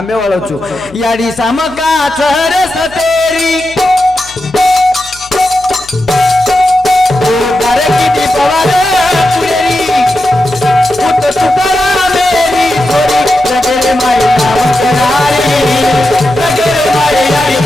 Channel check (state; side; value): noise; left; hum, 23 dB below the sound